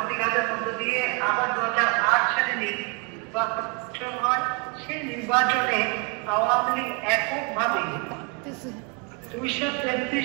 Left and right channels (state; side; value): quieter; left; 34.2 dB